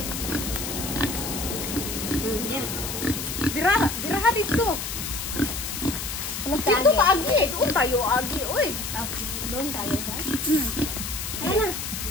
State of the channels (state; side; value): noise; left; hiss, 5 dB below the sound